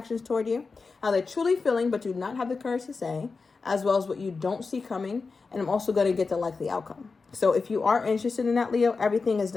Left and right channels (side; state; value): right; quieter; 4.4 dB